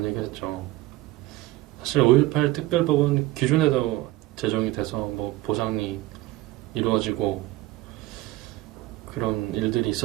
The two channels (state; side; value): quieter; left; 17.6 dB